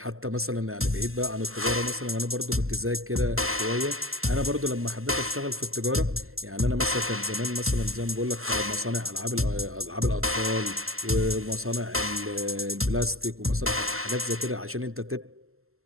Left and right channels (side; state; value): left; late; 0.62 ms